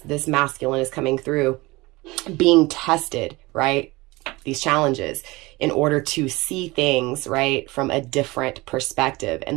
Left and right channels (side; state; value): left; quieter; 22.1 dB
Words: masculine is coming through, being tested, right? These challenges in order to see things, right, from a different perspective. And